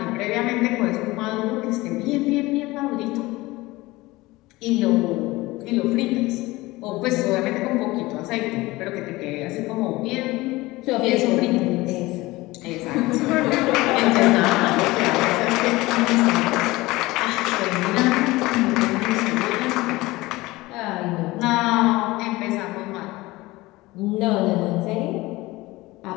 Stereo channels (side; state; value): right; quieter; 20.2 dB